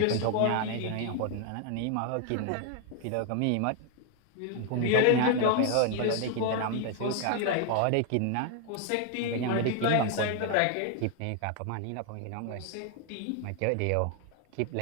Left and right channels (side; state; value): both; different; correlation 0.00